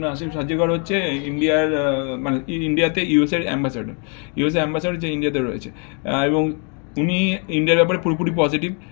আসে। সার্জিও গড হচ্ছে ইন্ডিয়ার মানে ইন্ডিয়াতে ইউএসের অ্যাম্বাসাডার, ইউএসএ অ্যাম্বাসাডার যে ইন্ডিয়াতে রয়েছে। এবং উনি ইন্ডিয়ার ব্যাপারে পুরোপুরি পজিটিভ,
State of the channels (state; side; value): quieter; right; 38.4 dB